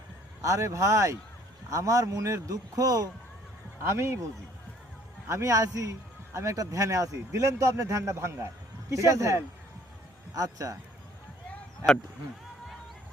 আরে ভাই, আমার মনের দুঃখ আমি বুঝি। আমি আছি, আমি একটা ধ্যানে আছি, দিলেন তো আপনি ধ্যানটা ভাঙ্গায়। কিসের ধ্যান? আচ্ছা,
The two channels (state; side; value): normal; both; correlation 0.59